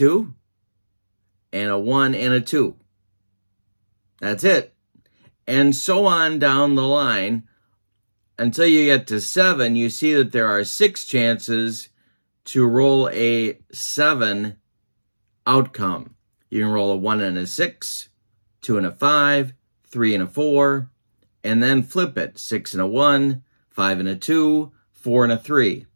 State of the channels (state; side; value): inverted; both; correlation -1.00